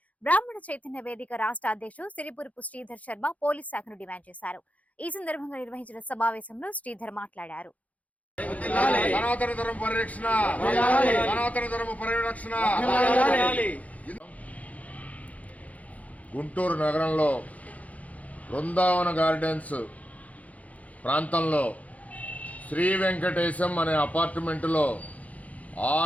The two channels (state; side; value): late; right; 0.070 ms